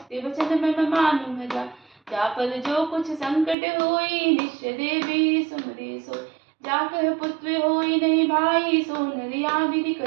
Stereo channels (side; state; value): left; drops out; at 3.6 s